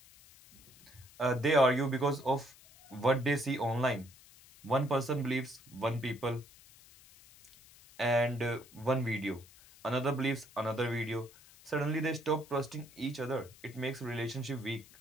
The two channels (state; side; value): noise; left; hiss, 23 dB below the sound